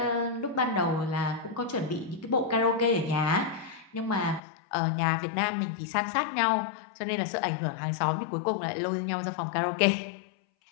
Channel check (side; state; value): right; drops out; at 4.4 s